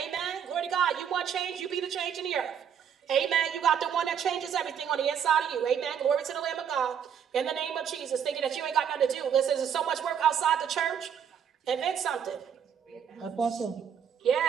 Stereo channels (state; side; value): quieter; left; 8.1 dB